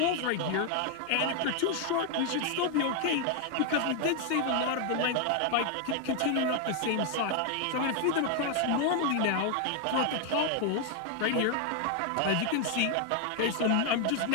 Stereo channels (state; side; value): different; both; correlation 0.00